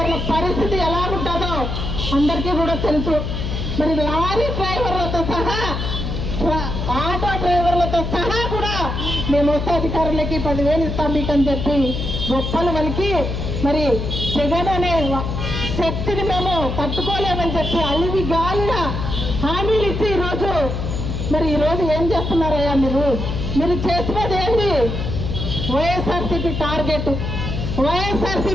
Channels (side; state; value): left; noise; hum, 3 dB below the sound